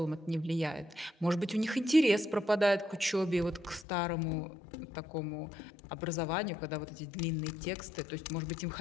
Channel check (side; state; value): right; drops out; at 3.9 s